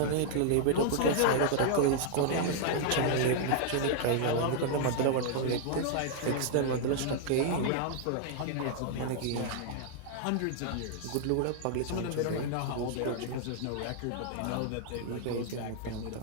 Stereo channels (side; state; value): both; different; correlation -0.01